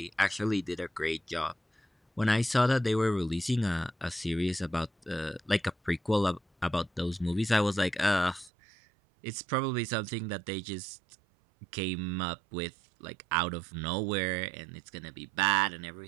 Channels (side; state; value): left; drops out; at 8.5 s